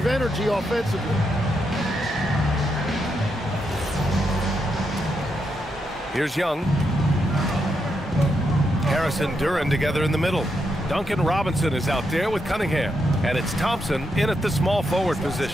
energy offensively. Here's Young. Harris and Duren together in the middle. Duncan Robinson is out there with Cunningham. And it's Thompson in at the small forward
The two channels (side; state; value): both; normal; correlation 0.82